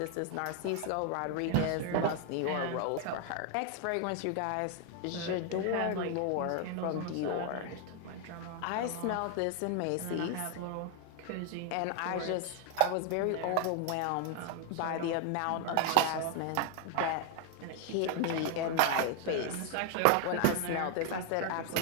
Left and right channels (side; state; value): both; different; correlation 0.00